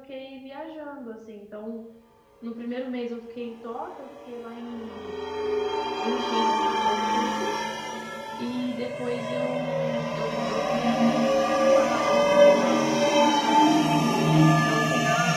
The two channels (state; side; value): identical; both; correlation 1.00